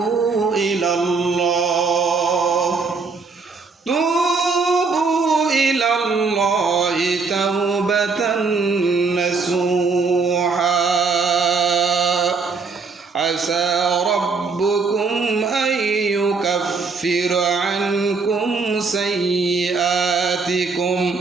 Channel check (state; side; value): quieter; left; 4.6 dB